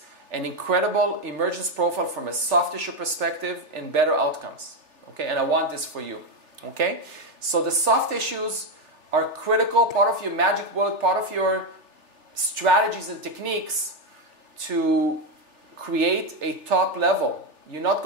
an incredible emergence profile from a soft tissue perspective and better outcomes. Okay, and I want this for you. Okay? So the soft tissues are critical, part of your magic bullet, part of your strategies and techniques to create a top level. You're not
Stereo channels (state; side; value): late; left; 3.4 ms